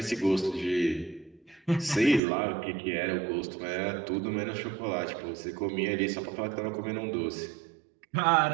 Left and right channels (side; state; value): left; drops out; at 2.2 s